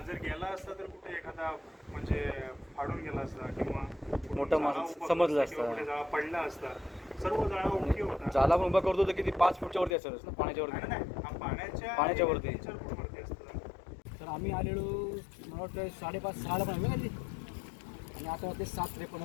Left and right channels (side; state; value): right; drops out; at 10.0 s